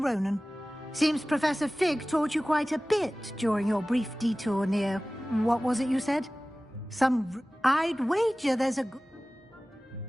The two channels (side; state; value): both; normal; correlation 0.97